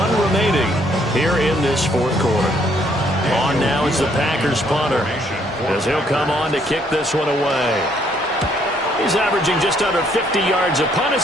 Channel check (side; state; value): both; normal; correlation 0.68